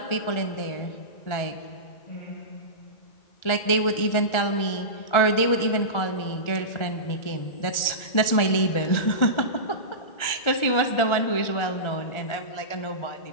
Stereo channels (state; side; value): late; right; 1.4 ms